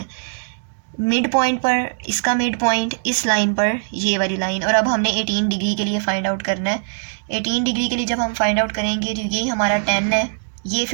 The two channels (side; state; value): left; silent; 65 dB below the other